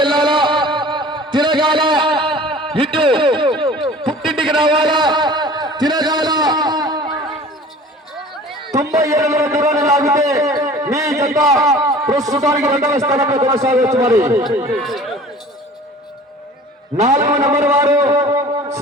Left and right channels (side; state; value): both; normal; correlation 0.45